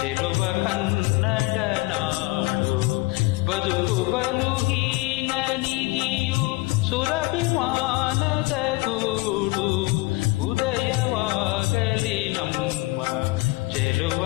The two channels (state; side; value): quieter; right; 22.8 dB